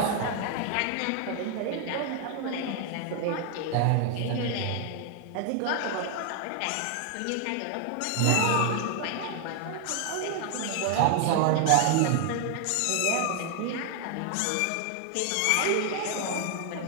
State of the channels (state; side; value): different; both; correlation 0.00